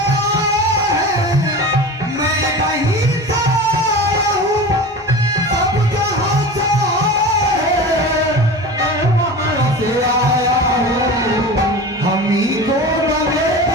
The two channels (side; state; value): both; normal; correlation 0.32